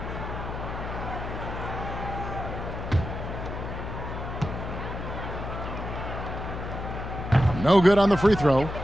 No good on the free throw.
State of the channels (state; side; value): noise; left; hum, 6 dB below the sound